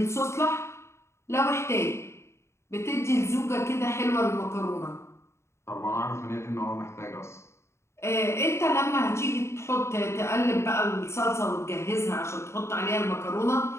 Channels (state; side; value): late; right; 0.13 ms